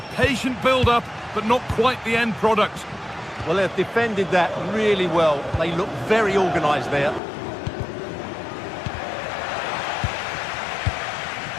patient build-up, but not quite the end product. Well, they've defended that really well. They look very organised there.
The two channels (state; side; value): drops out; right; at 7.2 s